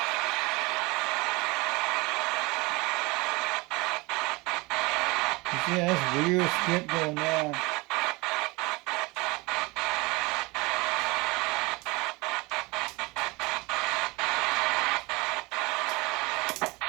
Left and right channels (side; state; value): left; quieter; 24.6 dB